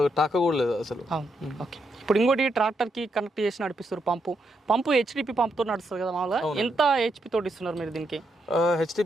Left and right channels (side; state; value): both; normal; correlation 0.80